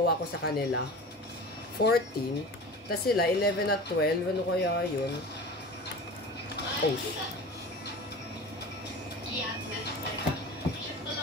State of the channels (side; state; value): both; normal; correlation 0.35